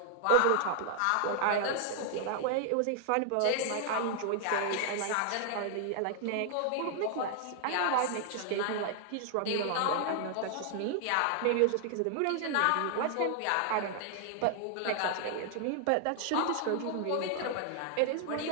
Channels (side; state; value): both; different; correlation 0.00